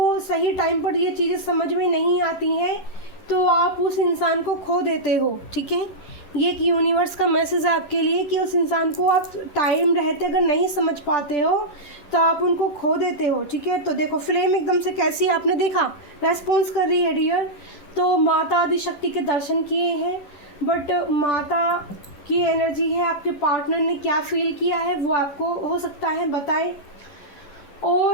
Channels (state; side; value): late; right; 10 ms